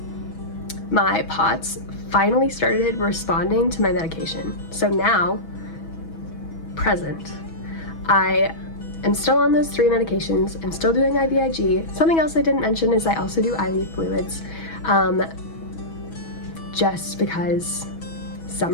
my POTS finally started responding to my medication. So now, present, I am still on those 3 medications. I'm still doing IVIG. Something else I didn't mention is I also do IV fluids, just because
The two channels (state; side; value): late; right; 6.2 ms